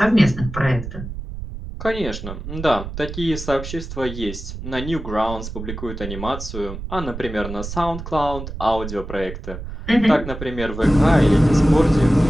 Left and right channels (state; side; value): noise; right; rumble, 9 dB below the sound